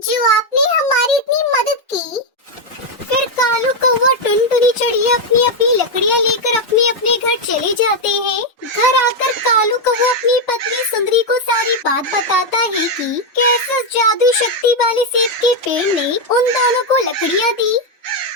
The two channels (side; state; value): both; normal; correlation 0.03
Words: जो आपने हमारी इतनी मदद की। फिर कालू कौवा टुनटुनी चिड़िया अपनी अपनी लकड़ियाँ लेकर अपने अपने घर चले जाते हैं। घर आकर कालू कौवा अपनी पत्नी सुंदरी को सारी बात बताता है कि कैसे उस जादुई शक्ति वाले सेब के पेड़ ने उन दोनों को लकड़ियाँ दी।